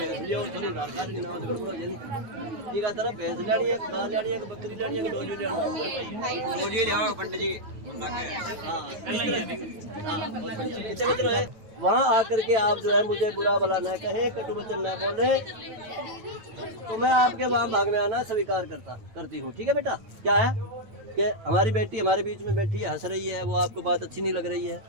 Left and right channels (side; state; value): left; late; 9.0 ms